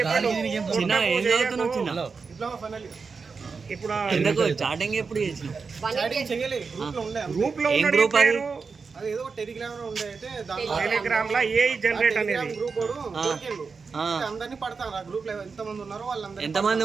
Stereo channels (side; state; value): left; quieter; 5.0 dB